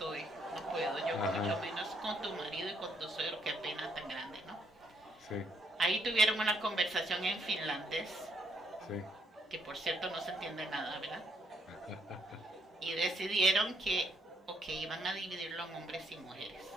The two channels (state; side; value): normal; both; correlation 0.72